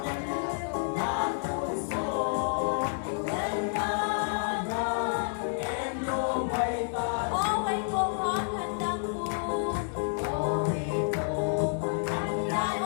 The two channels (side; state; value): right; silent; digital silence